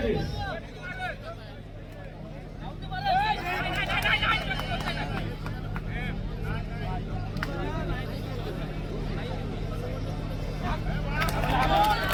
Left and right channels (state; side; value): identical; both; correlation 1.00